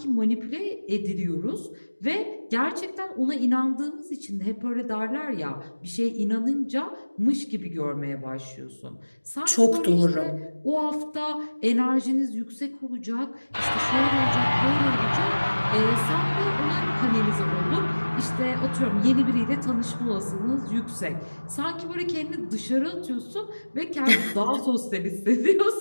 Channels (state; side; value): inverted; both; correlation -1.00